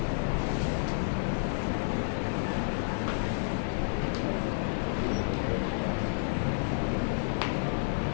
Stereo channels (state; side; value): silent; right; digital silence